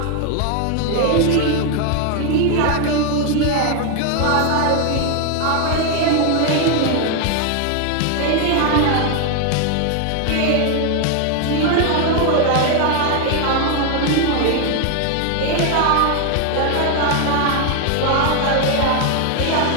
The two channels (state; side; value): different; both; correlation 0.01